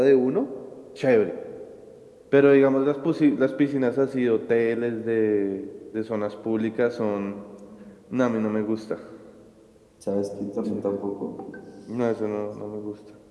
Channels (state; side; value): identical; both; correlation 1.00